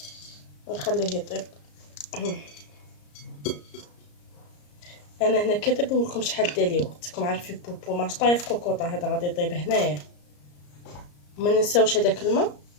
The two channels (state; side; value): late; right; 34 ms